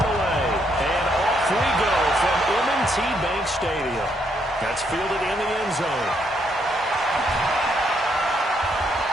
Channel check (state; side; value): normal; both; correlation 0.74